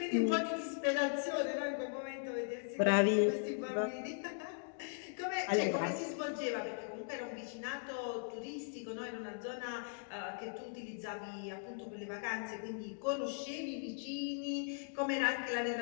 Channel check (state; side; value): silent; right; digital silence